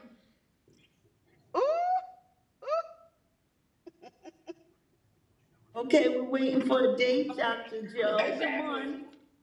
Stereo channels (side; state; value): both; identical; correlation 1.00